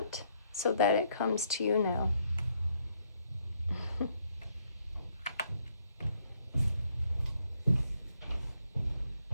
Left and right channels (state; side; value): inverted; both; correlation -0.71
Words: so that it comes to you now.